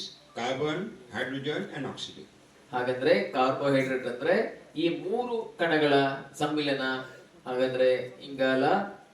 carbon, hydrogen and oxygen. ಹಾಗಾದ್ರೆ ಕಾರ್ಬೋಹೈಡ್ರೇಟ್ ಅಂದ್ರೆ ಈ ಮೂರು ಕಣಗಳ ಸಮ್ಮಿಲನ. ಹಾಗಾದ್ರೆ ಇಂಗಾಲ,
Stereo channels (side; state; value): both; identical; correlation 1.00